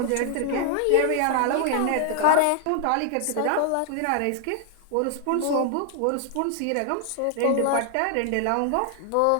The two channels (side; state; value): both; different; correlation 0.00